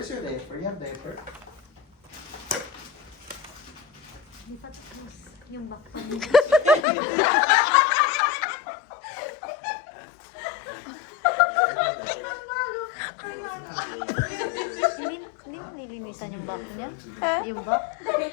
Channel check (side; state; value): right; drops out; at 6.9 s